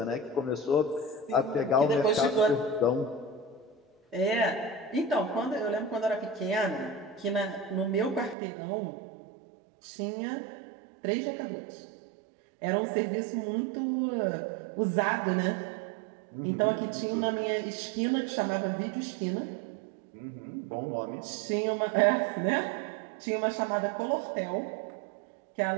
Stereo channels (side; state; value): left; drops out; at 8.3 s